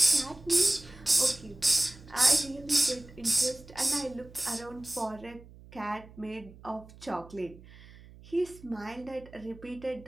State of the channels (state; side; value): noise; right; hum, 20 dB below the sound